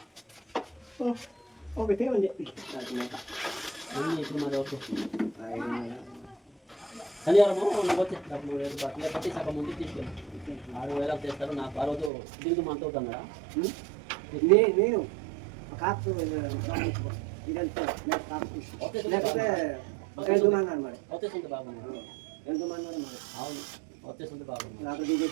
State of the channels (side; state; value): left; drops out; at 12.1 s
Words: ఇప్పుడు మరి ఓకే శనివారము నువ్వు వచ్చే డబ్బులు లేకపోతే సగం ముందు తీసుకెళ్ళి 6,000 చేస్తారు నాకు ఆ రోజు దిగుదు మంత్ అవుతాను కదా నేను కాపు వచ్చేసింది బాగుంది అవును వచ్చేసింది బాగుంది నాకు